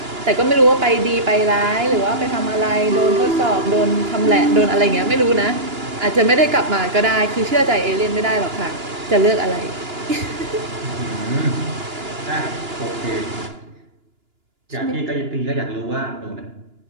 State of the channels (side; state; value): left; late; 2.9 ms